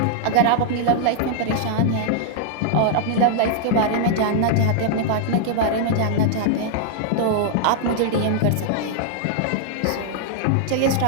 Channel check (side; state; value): both; different; correlation -0.01